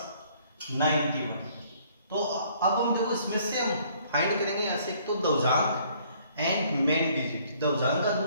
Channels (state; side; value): inverted; both; correlation -0.61